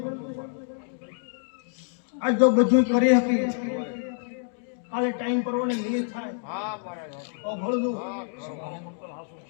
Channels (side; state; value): right; silent; digital silence